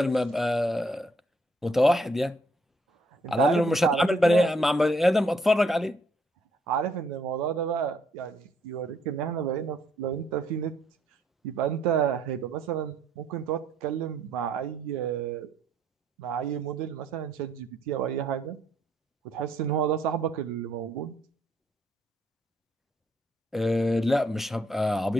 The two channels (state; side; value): normal; both; correlation 0.69